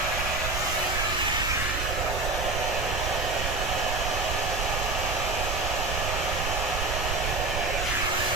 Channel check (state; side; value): noise; right; rumble, 3 dB below the sound